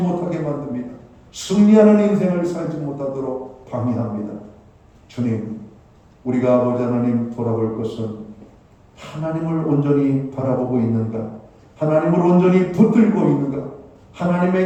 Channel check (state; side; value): identical; both; correlation 1.00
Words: 만듭니다. 승리하는 인생을 살지 못하도록 방해합니다. 주님, 우리가 아버지 하나님 돌아볼 것은 하나님을 온전히 바라보고 있는가? 하나님을 온전히 붙들고 있는가?